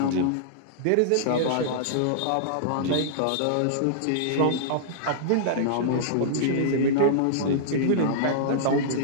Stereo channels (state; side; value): different; both; correlation -0.02